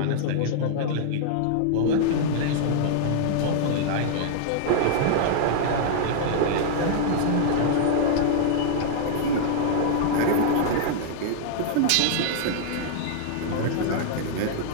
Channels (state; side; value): different; both; correlation -0.01